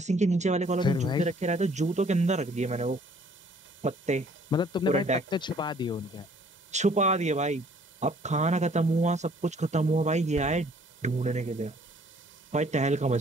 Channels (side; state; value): both; normal; correlation 0.59